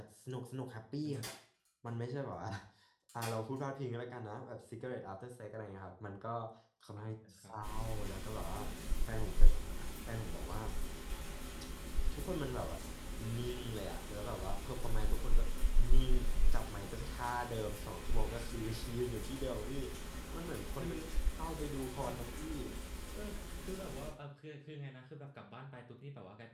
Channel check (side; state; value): both; identical; correlation 1.00